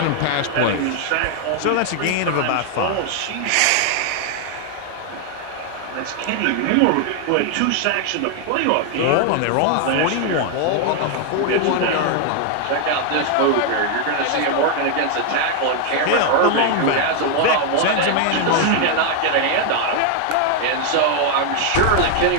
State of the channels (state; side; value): different; both; correlation 0.00